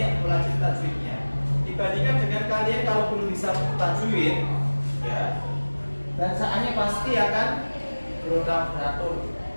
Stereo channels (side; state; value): both; inverted; correlation -1.00